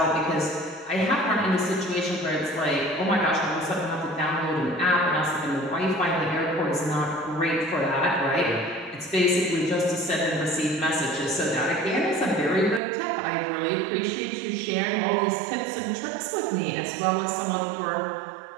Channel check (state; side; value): drops out; left; at 12.8 s